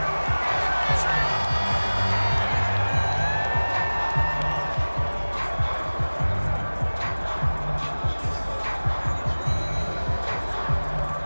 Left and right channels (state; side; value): inverted; both; correlation -1.00